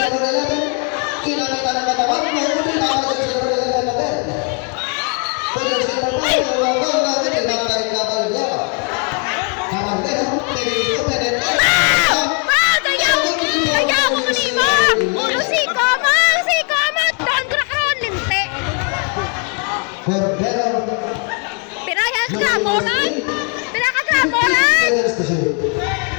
11. Kinamita ng katawan. Mahuli na ang jersey number 11 again. Jersey number 5. Wawang natin. Inakay Caballero. Caballero. Pinito. Penete. Cordero. Pinayas ka, Molan! Pinaka-Molan! 10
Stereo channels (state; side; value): quieter; right; 38.7 dB